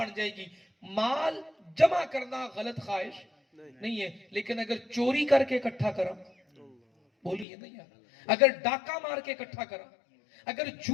جائے گی مال جمع کرنا غلط خواہش نہیں ہے لیکن اگر چوری کر کے اکٹھا کرا بولیے نہیں یار اگر ڈاکہ مار کے اکٹھا کرا اگر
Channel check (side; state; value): right; drops out; at 7.5 s